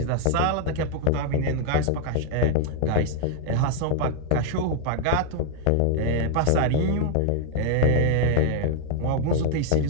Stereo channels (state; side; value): different; both; correlation 0.00